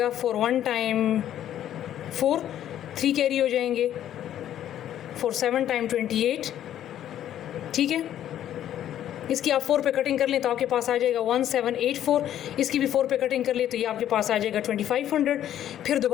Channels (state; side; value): quieter; right; 11.2 dB